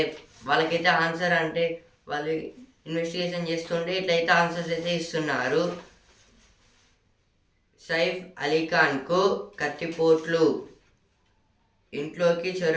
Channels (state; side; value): identical; both; correlation 1.00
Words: వాళ్ళకైతే ఆన్సర్ అంటే వాళ్ళు ఇన్వెస్టిగేషన్ చేస్తుంటే ఇట్లయితే ఆన్సర్స్ అయితే ఇస్తున్నారు. సైఫ్ అలీఖాన్కు కత్తిపోట్లు. ఇంట్లోకి